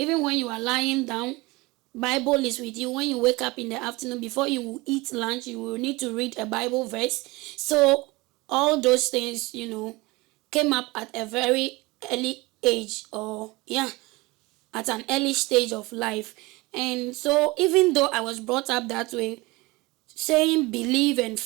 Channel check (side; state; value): left; quieter; 22.8 dB